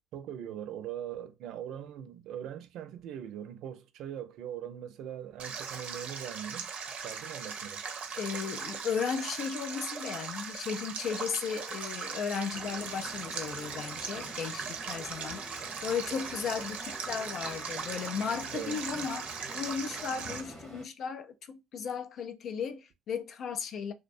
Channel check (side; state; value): both; normal; correlation 0.54